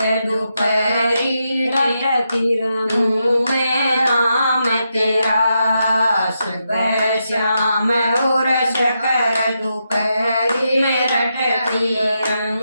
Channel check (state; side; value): inverted; both; correlation -0.84